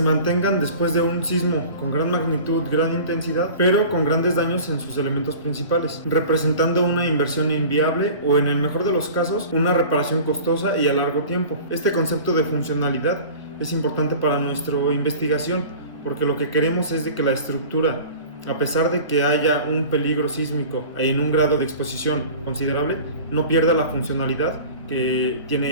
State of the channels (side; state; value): both; inverted; correlation -0.40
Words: después de un sismo con gran magnitud, gran intensidad, pero con grandes daños en sus elementos principales, representando una inversión inviable o, en el mejor de los casos, una reparación costosa y a largo tiempo. Este concepto de funcionalidad es importante para nuestra investigación, porque lo que queremos es de que la estructura, a pesar de que haya un peligro sísmico en un grado de exposición considerable, no pierda la funcionalidad que